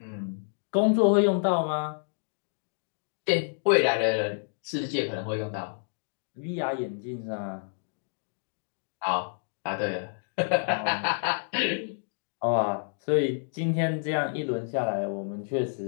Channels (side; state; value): right; silent; digital silence